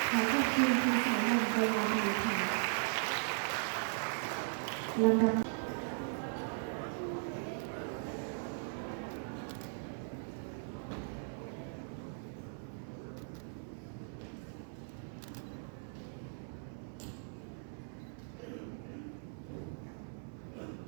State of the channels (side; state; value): left; silent; 52 dB below the other